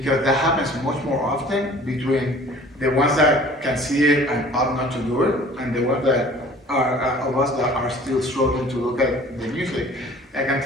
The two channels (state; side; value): normal; both; correlation 0.49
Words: that happens much more often between the ones that can see it and opt not to do it, and the ones that are of us that are still struggling to look at the music, I can